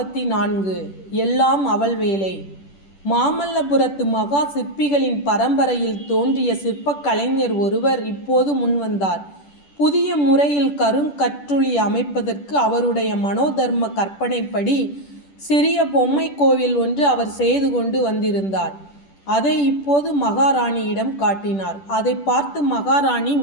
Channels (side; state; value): right; late; 10 ms